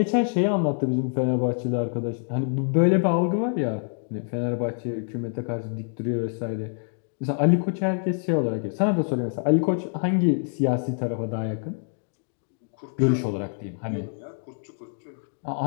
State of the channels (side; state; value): right; silent; 61 dB below the other